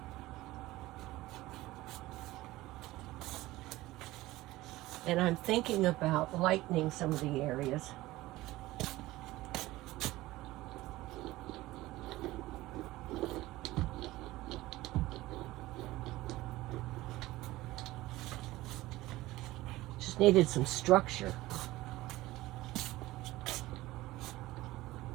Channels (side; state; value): left; quieter; 17.9 dB